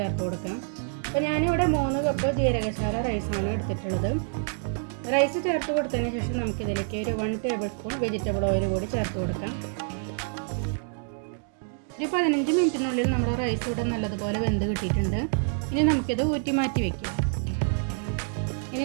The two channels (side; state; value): left; silent; 60 dB below the other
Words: കൊടുക്കാം. അപ്പോൾ ഞാനിവിടെ 3 കപ്പ് ജീരകശാല റൈസാണ് എടുത്തിട്ടുള്ളത്. റൈസ് ചേർത്ത് കൊടുത്തതിന് ശേഷം നമുക്കിതിലേക്ക് ഒരു 1 ടേബിൾ സ്പൂൺ വെജിറ്റബിൾ ഓയിൽ കൂടി ചേർത്ത് കൊടുക്കാം. ഒരു 15 മിനിറ്റിനുള്ളിൽ നമ്മുടെ റൈസ് ഇവിടെ നല്ലതുപോലെ വെന്ത് കിട്ടിയിട്ടുണ്ട്. ഇനി നമുക്കിത് ഊറ്റി മാറ്റി വയ്ക്കാം. ഇനി